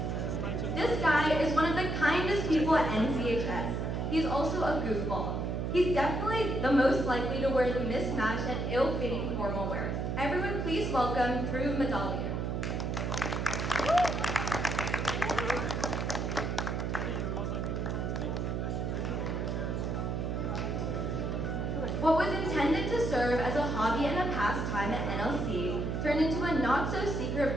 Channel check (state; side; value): noise; right; hum, 1 dB below the sound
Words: This guy is one of the kindest people at NCHS. He's also a goofball. He's definitely the most likely to wear the mismatched and ill-fitting formal wear. Everyone please welcome Dhruv Madhalia. What was intended to serve as a hobby and a pastime at NLC turned into a not-so-secret